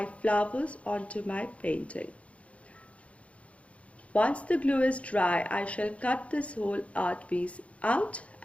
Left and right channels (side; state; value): right; late; 0.064 ms